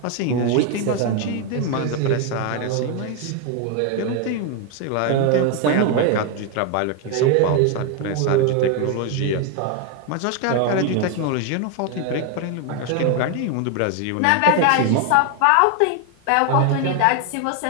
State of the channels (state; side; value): different; both; correlation 0.01